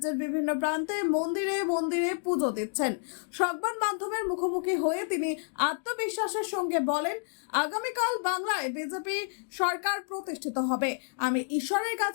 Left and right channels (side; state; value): right; silent; digital silence